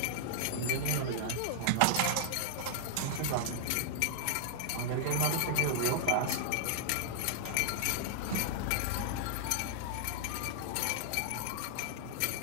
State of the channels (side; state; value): both; different; correlation -0.01